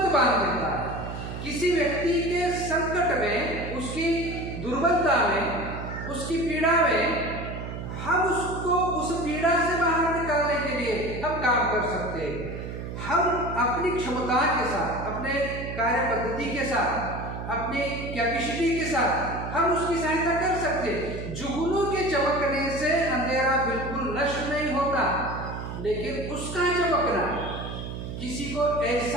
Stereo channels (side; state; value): right; noise; hum, 7 dB below the sound